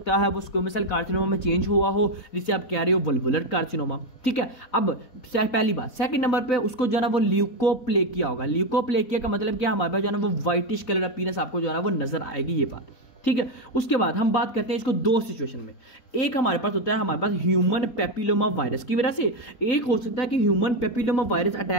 है, वो स्क्वेमस सेल कार्सिनोमा में चेंज हुआ हो, जिसे आप कह रहे हो वल्वुलर कार्सिनोमा, ठीक है। अब पहली बात, सेकंड नंबर पे उसको जो है ना वो ल्यूकोप्लेकिया होगा। ल्यूकोप्लेकिया का मतलब क्या, हमारे पास जो है ना वो व्हाइटिश कलर अपीयरेंस आपको जो है ना वो नजर आएगी, ये बात, ठीक है। उसके बाद हम बात करते हैं इसको 2 सिचुएशन में। एक हमारे पास होता है हमारे पास ह्यूमन पेपिलोमा वायरस की वजह से, एक हो सकता है कि ह्यूमन पेपिलोमा वायरस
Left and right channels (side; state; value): right; late; 4.2 ms